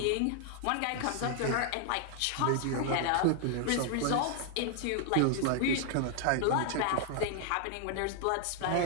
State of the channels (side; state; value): both; different; correlation 0.00